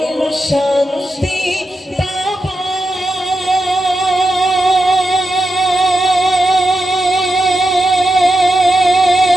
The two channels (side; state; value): both; normal; correlation 0.87